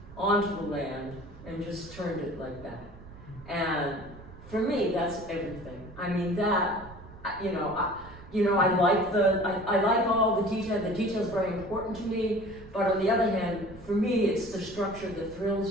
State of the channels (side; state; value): right; noise; rumble, 18 dB below the sound